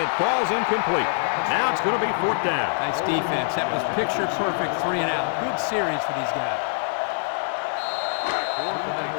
falls incomplete. Now it's going to be 4th down. Nice defense. That was picture perfect 3 and out. Good series for these guys.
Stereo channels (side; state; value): right; silent; digital silence